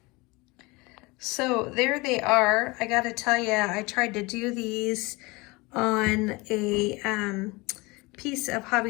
So there they are. I got to tell you, I tried to do these on a piece of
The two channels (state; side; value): quieter; right; 24.4 dB